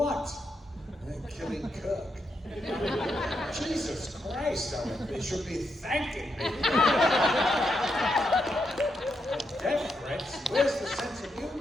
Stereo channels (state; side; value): normal; both; correlation 0.82